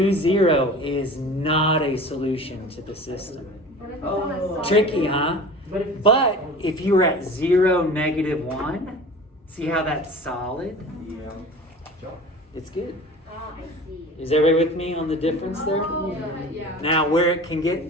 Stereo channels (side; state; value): both; normal; correlation 0.39